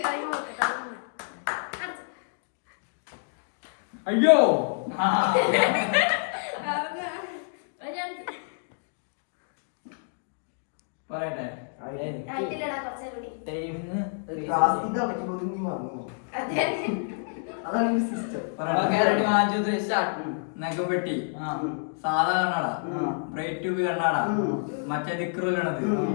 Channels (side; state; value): right; silent; digital silence